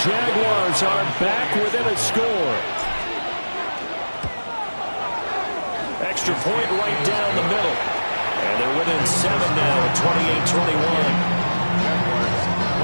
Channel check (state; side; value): inverted; both; correlation -1.00